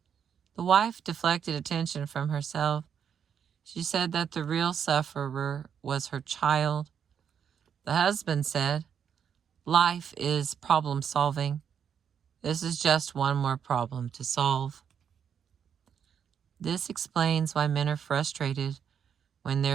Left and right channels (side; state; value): left; quieter; 7.9 dB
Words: The wife deflected attention from herself. She said that the real sufferer was her child. The husband said, life is problem solving. This is just one more problem to solve. This explains why men are frustrated when